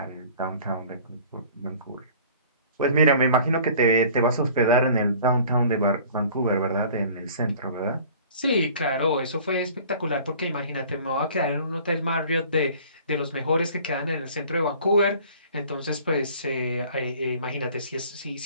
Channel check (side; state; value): both; inverted; correlation -0.48